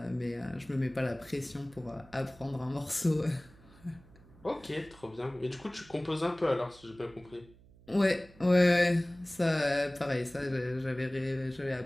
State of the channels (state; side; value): noise; right; hum, 25 dB below the sound